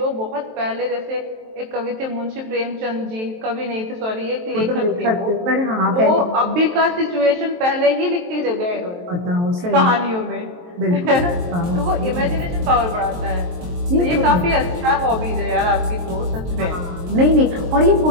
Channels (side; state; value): left; late; 23 ms